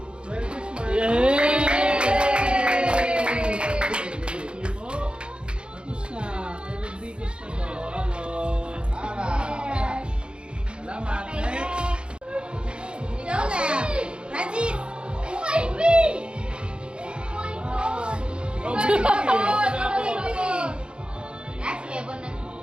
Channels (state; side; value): late; left; 0.054 ms